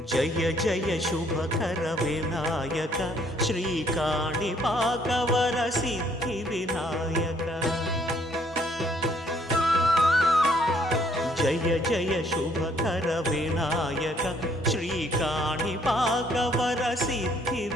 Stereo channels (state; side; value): normal; both; correlation 0.65